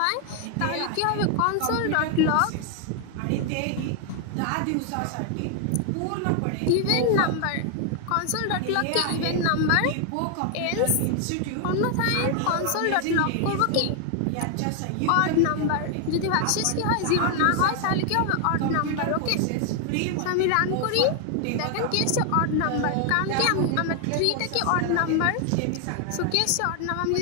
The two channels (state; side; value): different; both; correlation 0.00